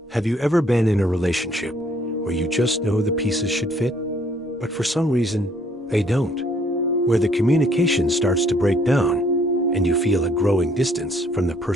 Have you ever been in a relationship where you just know the pieces should fit, but for some reason they don't? Where the communication starts to break down and you feel a growing distance from the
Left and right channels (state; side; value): normal; both; correlation 0.64